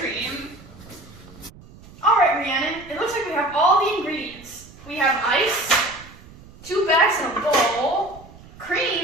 Alright, Rhiannon, it looks like we have all the ingredients. We have ice, 2 bags in a bowl,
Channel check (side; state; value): right; noise; rumble, 21 dB below the sound